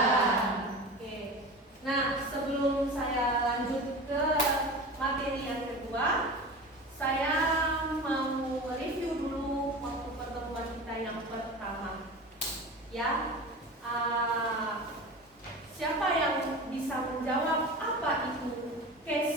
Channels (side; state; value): both; normal; correlation 0.32